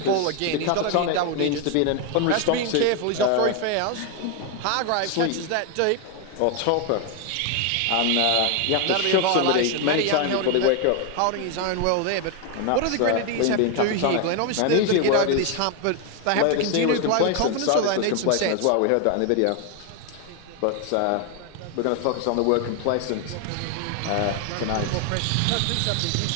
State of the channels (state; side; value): different; both; correlation 0.01